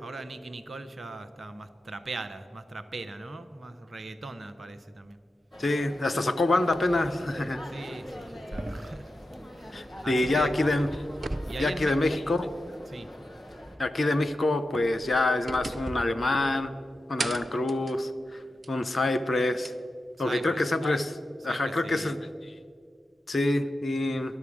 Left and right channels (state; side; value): normal; both; correlation 0.91